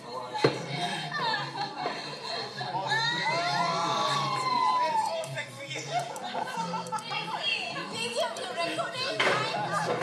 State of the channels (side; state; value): both; identical; correlation 1.00